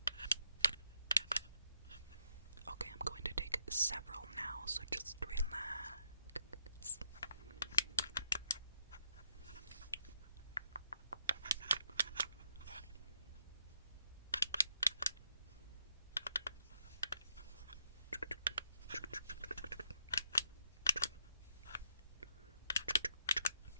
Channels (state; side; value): inverted; both; correlation -0.77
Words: Okay, I'm going to take several now, so just relax.